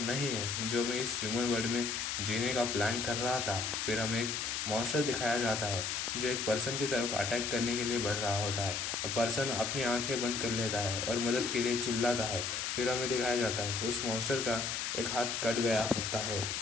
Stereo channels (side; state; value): left; noise; hiss, 1 dB below the sound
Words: नहीं है जो मैं इस ह्यूमन वर्ल्ड में जीने का प्लान कर रहा था। फिर हमें एक मॉन्स्टर दिखाया जाता है जो एक पर्सन की तरफ अटैक करने के लिए बढ़ रहा होता है, और पर्सन अपनी आंखें बंद कर लेता है और मदद के लिए चिल्लाता है। फिर हमें दिखाया जाता है उस मॉन्स्टर का एक हाथ कट गया होता है।